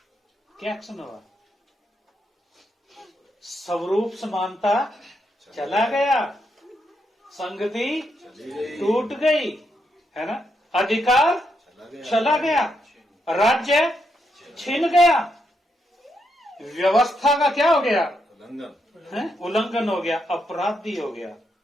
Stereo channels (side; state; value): both; normal; correlation 0.80